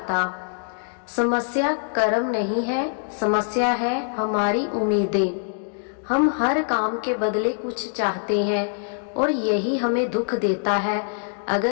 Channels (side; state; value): right; silent; digital silence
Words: समस्या कर्म नहीं है, समस्या है हमारी उम्मीदें। हम हर काम के बदले कुछ चाहते हैं और यही हमें दुख देता है।